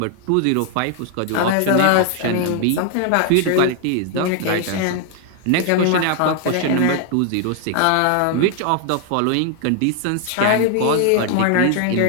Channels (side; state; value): both; different; correlation 0.00